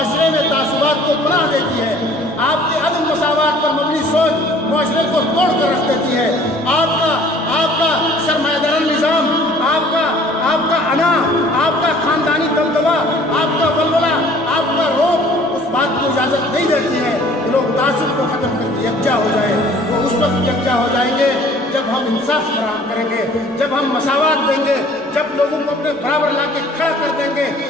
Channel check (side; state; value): both; normal; correlation 0.53